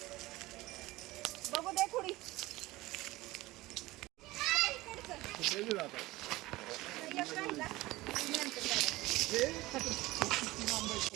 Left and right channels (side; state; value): left; quieter; 19.1 dB